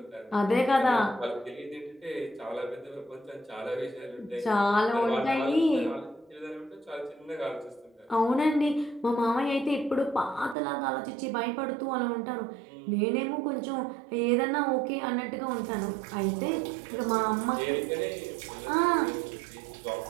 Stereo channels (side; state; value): left; drops out; at 10.6 s